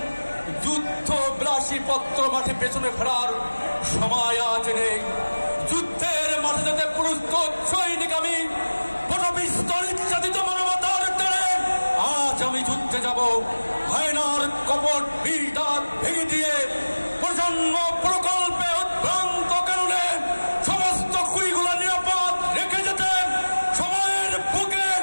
যুদ্ধ বিলাসী পত্র মাঠে পেছনে ফেরার সময় আজ নেই। যুদ্ধের মাঠে যেতে প্রস্তুত সৈনিক আমি, পটপিস্তল ইচ্ছাদিত মানবতার টানে আজ আমি যুদ্ধে যাব। হায়নার কপট বিষ-দাঁত ভেঙে দিয়ে প্রজন্ম প্রকল্পে উদ্ভ্রান্ত কারণে সমস্ত কুড়িগুলো নিরাপদ রেখে যেতে সময়ের বুকে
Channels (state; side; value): inverted; both; correlation -1.00